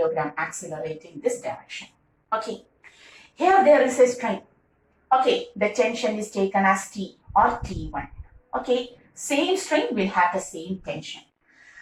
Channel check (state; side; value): identical; both; correlation 1.00